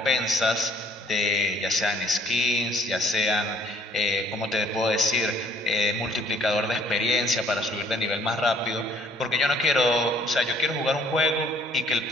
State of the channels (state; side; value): normal; both; correlation 0.60